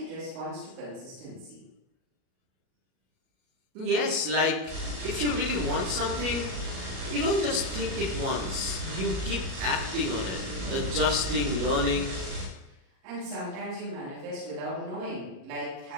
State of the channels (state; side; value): late; left; 38 ms